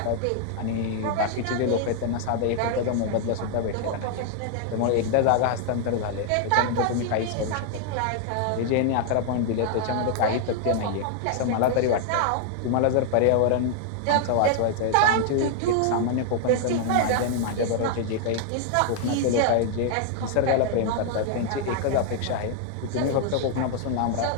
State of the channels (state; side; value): different; both; correlation 0.00